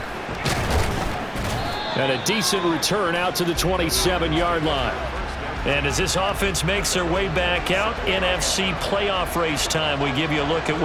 And a decent return out to the 27-yard line. And as this offense makes their way back out, NFC playoff race time, we give you a look at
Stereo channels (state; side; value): identical; both; correlation 1.00